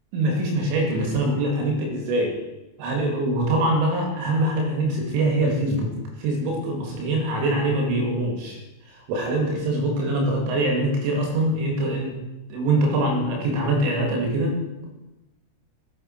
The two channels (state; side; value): late; left; 27 ms